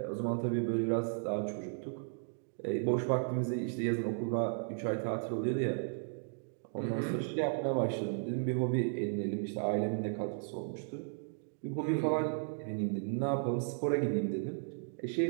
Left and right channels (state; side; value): silent; left; digital silence